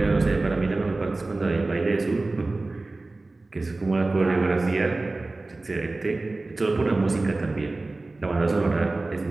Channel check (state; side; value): quieter; left; 3.2 dB